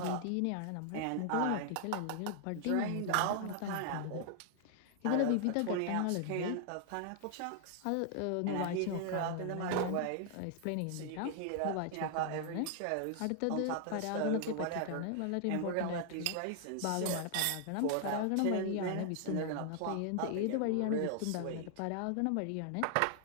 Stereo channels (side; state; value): both; different; correlation 0.00